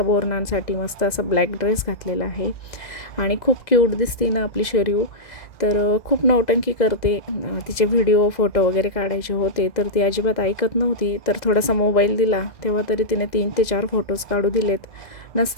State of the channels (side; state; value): right; late; 2.0 ms